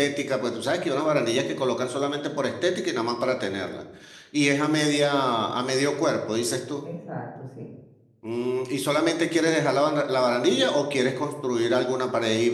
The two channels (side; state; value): both; identical; correlation 1.00